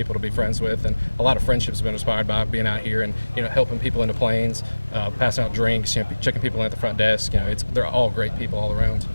to be friends with, and a lot of friendships have been inspired by being out here and, helping people into planes, passing out drinks, checking people in at the front desk. They're all great people all around.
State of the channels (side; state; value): both; inverted; correlation -1.00